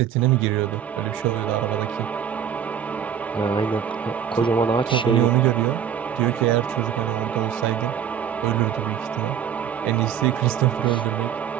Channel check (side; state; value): left; quieter; 8.8 dB